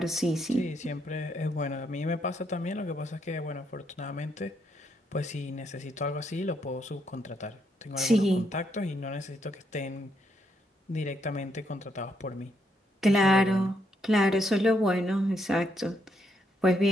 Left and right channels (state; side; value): normal; both; correlation 0.76